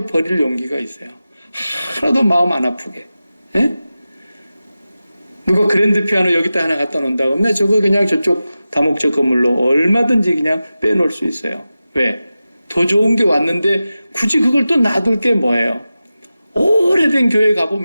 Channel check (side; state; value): both; inverted; correlation -0.94